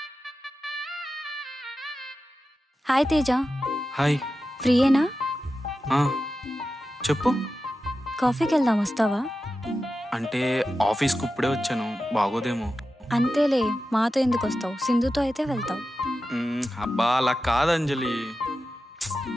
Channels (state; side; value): normal; both; correlation 0.92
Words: హాయ్ తేజ. హాయ్. ఫ్రీయేనా? చెప్పు. కాఫీకి వెళ్దాం, వస్తావా? అంటే ఆఫీస్కి ఇప్పుడే వచ్చాను, బాగోదేమో. అంతేలే, మాతో ఎందుకు వస్తావు? సింధుతో అయితే వెళ్తావు. అబ్బా అలా కాదు అంజలి.